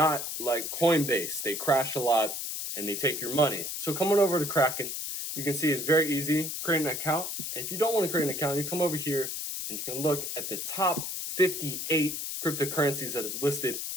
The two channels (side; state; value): left; noise; hiss, 4 dB below the sound